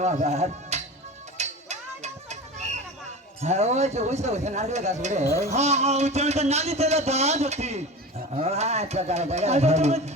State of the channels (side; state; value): both; normal; correlation 0.32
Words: আবার হ্যাঁ ওই যে ওই তো নারকেল গাছ রে হ্যাঁ হ্যাঁ ওই তো নালি তেলে দাঁত হতি আচ্ছা